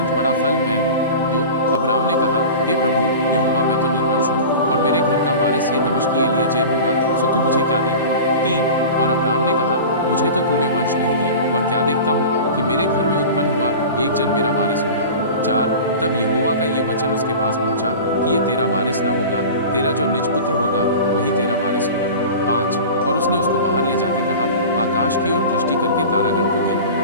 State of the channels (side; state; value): both; inverted; correlation -0.34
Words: बड़ा फल मैं हूँ। 2 अब्राम ने कहा, हे प्रभु यहोवा, मैं तो निर्वंश हूँ और मेरे घर का वारिस ये दमिश्की एलीएजेर होगा, सो तू मुझे क्या देगा। 3 और अब्राम ने कहा, मुझे तो तूने वंश नहीं दिया और क्या देखता हूँ कि मेरे घर में उत्पन्न हुआ एक जन मेरा वारिस होगा। 4 तब यहोवा का ये वचन उसके पास पहुंचा कि ये तेरा वारिस न होगा, तेरा जो निज पुत्र होगा वही तेरा वारिस होगा। 5 और उसने उसको बाहर ले जाके कहा, आकाश की ओर दृष्टि करके तारागण को गिन,